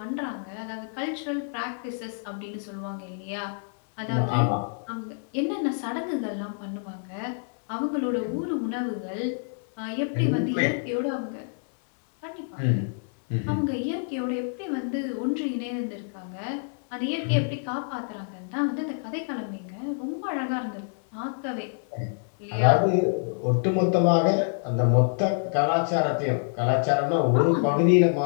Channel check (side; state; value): right; silent; 60 dB below the other